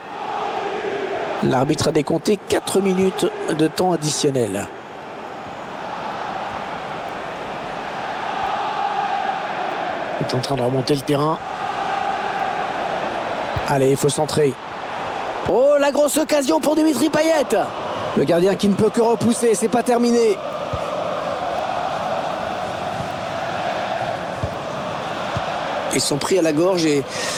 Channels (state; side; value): identical; both; correlation 1.00